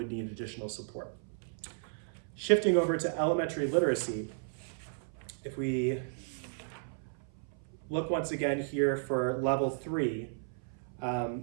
need additional support. Shifting over to elementary literacy, if we look once again here for level 3,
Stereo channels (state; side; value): silent; left; 55 dB below the other